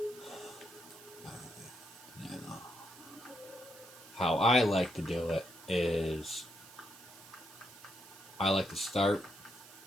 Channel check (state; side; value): noise; right; hiss, 18 dB below the sound